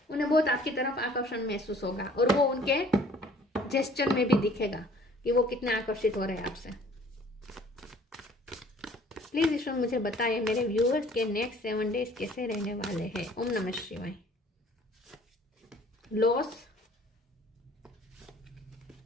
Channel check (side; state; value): both; normal; correlation 0.54